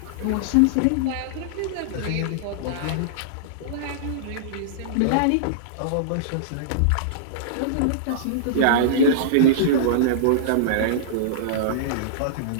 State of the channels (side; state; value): both; different; correlation -0.02